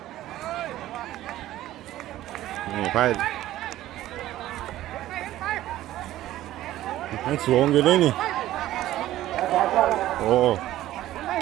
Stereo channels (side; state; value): left; quieter; 14.4 dB